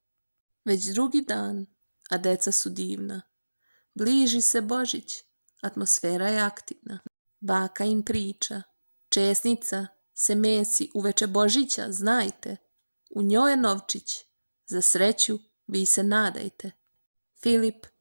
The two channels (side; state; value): both; inverted; correlation -1.00